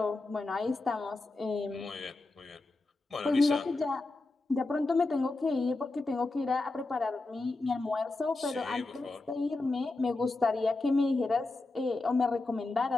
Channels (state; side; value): quieter; right; 3.2 dB